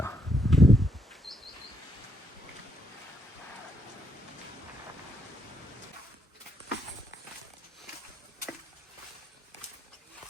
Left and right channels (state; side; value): normal; both; correlation 0.75